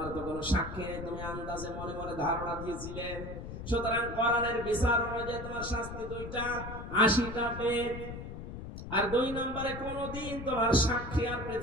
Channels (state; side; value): noise; left; rumble, 9 dB below the sound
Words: তো কোনো সাক্ষী নেই, তুমি আন্দাজে মনে মনে ধারণা দিয়েছিলে, সুতরাং কোরআনের বিচার অনুযায়ী তোমার শাস্তি 2টা, 80টা বেত। আর 2 নম্বরে কোনদিন তোমার সাক্ষী আর